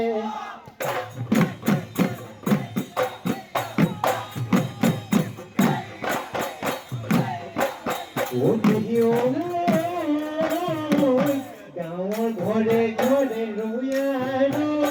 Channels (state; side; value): identical; both; correlation 1.00